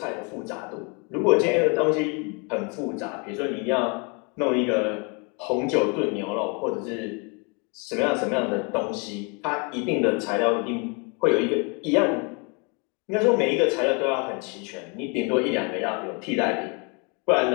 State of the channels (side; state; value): right; quieter; 32.9 dB